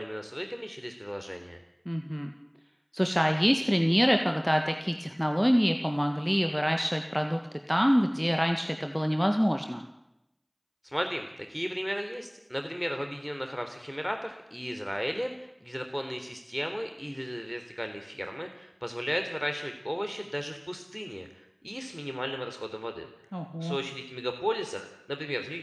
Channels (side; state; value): both; identical; correlation 1.00